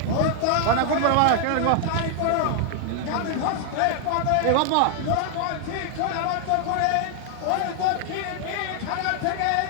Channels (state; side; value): different; both; correlation 0.00